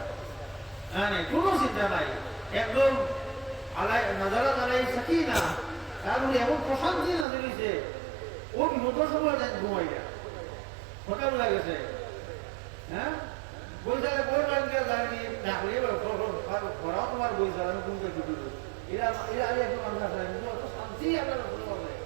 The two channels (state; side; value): drops out; left; at 7.2 s